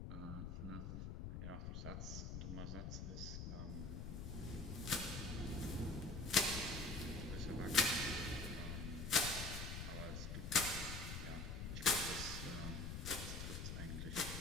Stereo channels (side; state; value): left; noise; rumble, 5 dB below the sound